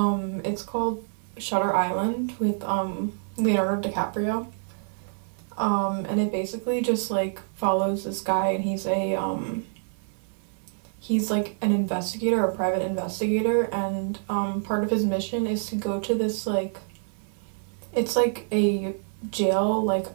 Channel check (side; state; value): left; silent; 56 dB below the other